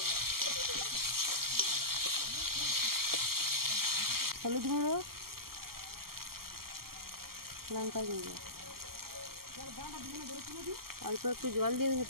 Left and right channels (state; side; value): late; left; 0.93 ms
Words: হলুদ গুঁড়ো, লঙ্কা গুঁড়ো, অল্প একটু জল দিয়ে